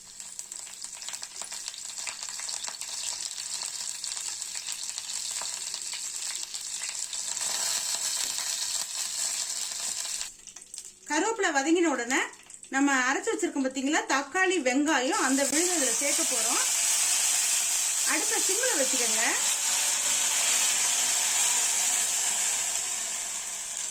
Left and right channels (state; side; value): identical; both; correlation 1.00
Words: கருவேப்பிலை வதங்கின உடனே நம்ம அரைச்சி வச்சிருக்கோம் பார்த்தீங்களா தக்காளி வெங்காயம், அந்த விழுதை இதில் சேர்க்க போகிறோம். அடுப்பை சிம்மில் வச்சுக்கோங்க.